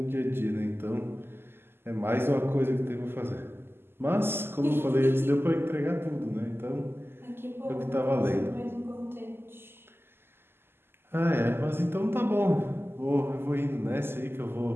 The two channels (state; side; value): late; left; 0.11 ms